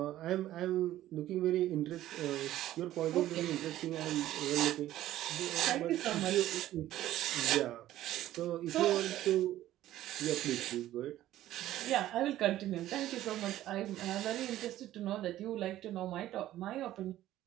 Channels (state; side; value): quieter; left; 13.9 dB